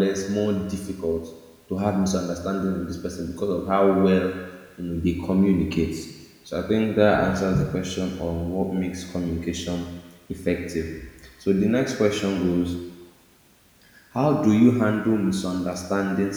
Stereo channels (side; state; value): both; identical; correlation 1.00